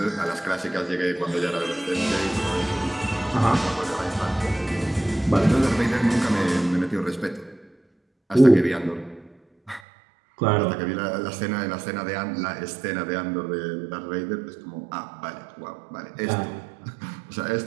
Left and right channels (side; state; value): left; drops out; at 9.8 s